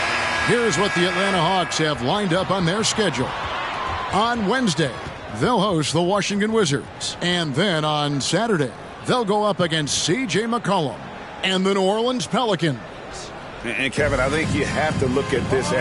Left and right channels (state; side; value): identical; both; correlation 1.00